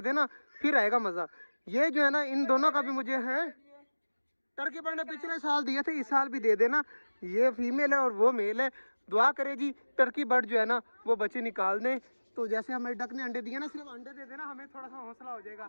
देना फिर आएगा मज़ा। ये जो है ना इन दोनों का भी मुझे है, टर्की बर्ड ने पिछले साल दिए थे, इस साल भी दे देना। ये फीमेल है और वो मेल है। दुआ करे जी टर्की बर्ड जो है ना वो बच्चे निकाल दें। तो जैसे हमें डक ने अंडे दिए ना, सिर्फ अंडे दे देना, हमें थोड़ा सा हौसला हो जाएगा।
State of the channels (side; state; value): both; inverted; correlation -1.00